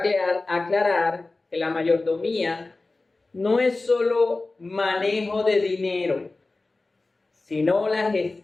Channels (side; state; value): right; quieter; 3.3 dB